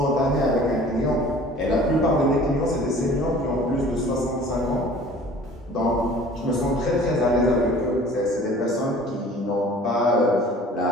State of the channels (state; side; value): normal; both; correlation 0.48